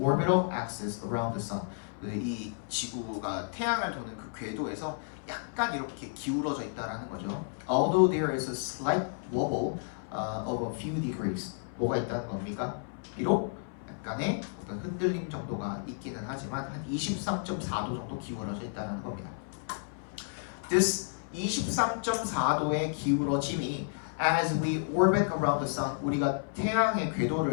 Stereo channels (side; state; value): right; silent; 57 dB below the other